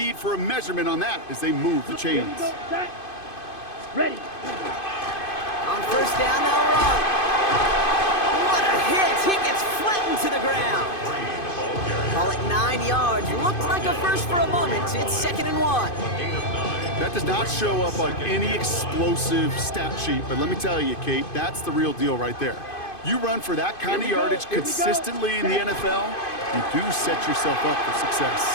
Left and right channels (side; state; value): right; late; 2.5 ms